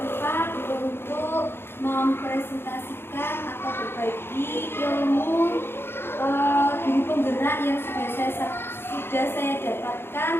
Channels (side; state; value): right; late; 0.11 ms